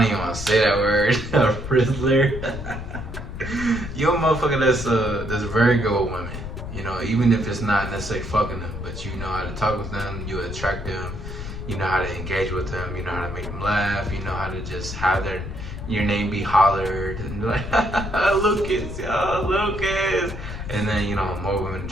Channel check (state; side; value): noise; left; rumble, 8 dB below the sound